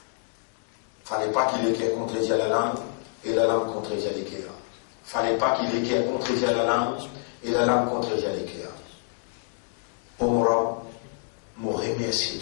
ne fallait pas qu'il ait contredit à la langue et la langue contredit à l'équerre. Il ne fallait pas qu'il ait contredit à la langue et la langue contredit à l'équerre. Omra, je remercie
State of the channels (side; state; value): right; silent; 60 dB below the other